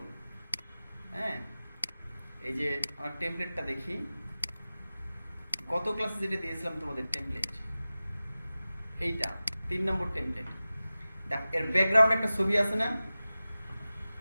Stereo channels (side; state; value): both; inverted; correlation -0.96